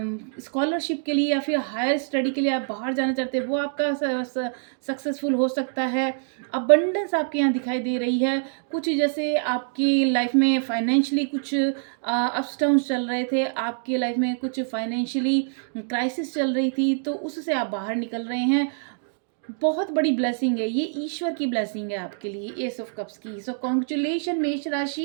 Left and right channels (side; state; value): left; silent; digital silence